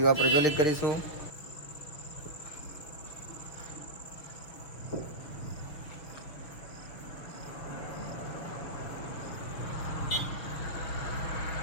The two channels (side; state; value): right; late; 6.4 ms